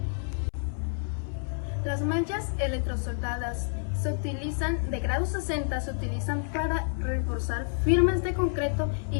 Las mallas electrosoldadas se utilizan de grado 60, se utilizan para reforzar firmes de concreto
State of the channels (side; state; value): right; silent; 59 dB below the other